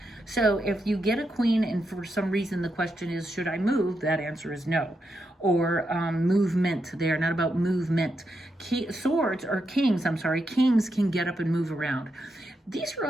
So if you get a queen and for some reason the question is, should I move? That answer is no. Or movement. They are not about movement. Swords, or kings, kings can get up and move around. These are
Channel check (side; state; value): both; normal; correlation 0.84